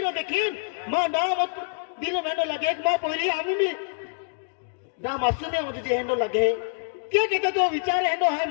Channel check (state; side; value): silent; right; digital silence